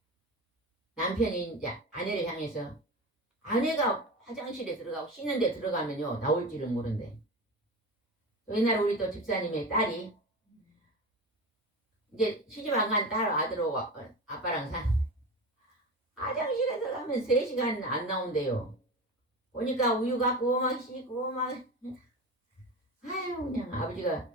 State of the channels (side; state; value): both; normal; correlation 0.27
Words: 남편이 이제 아내를 향해서 아내가 화장실에 들어가고 씻는 데 들어가면요 나올지는 모른대. 옛날에 우리 또 집사님의 딸이 이제 시집 안 간 딸 아들하고 아빠랑 화장실에 들어가면 3시간 안 나온대요. 보니까 우유 갖고 막 씻고 막 아유 그냥 아버지가